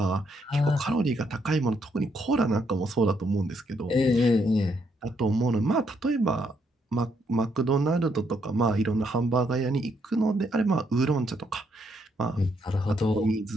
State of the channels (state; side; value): normal; both; correlation 0.74